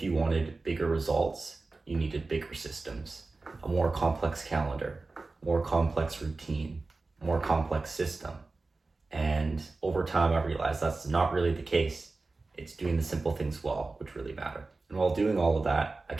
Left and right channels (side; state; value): left; quieter; 3.6 dB